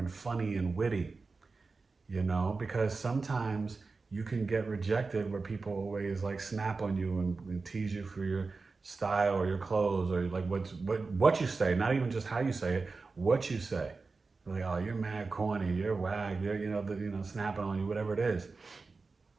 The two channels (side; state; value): left; quieter; 4.1 dB